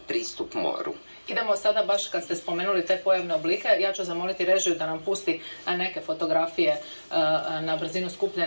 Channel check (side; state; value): both; inverted; correlation -1.00